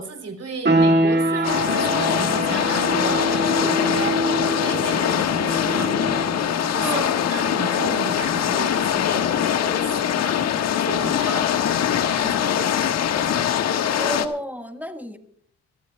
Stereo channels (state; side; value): quieter; right; 4.8 dB